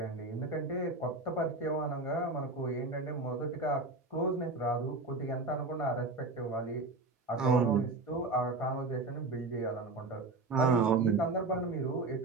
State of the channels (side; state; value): left; quieter; 3.4 dB